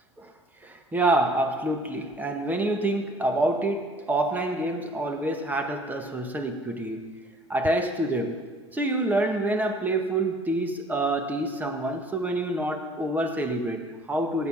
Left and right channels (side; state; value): both; normal; correlation 0.54